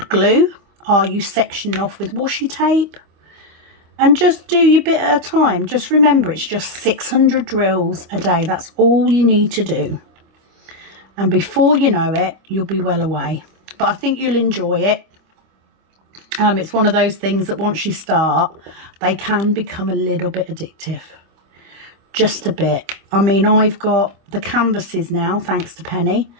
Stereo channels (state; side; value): late; left; 25 ms